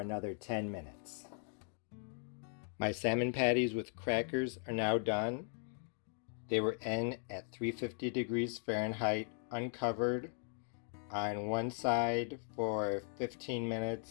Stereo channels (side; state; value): right; silent; 52 dB below the other